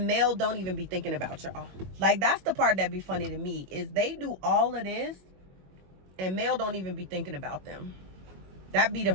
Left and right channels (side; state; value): left; late; 21 ms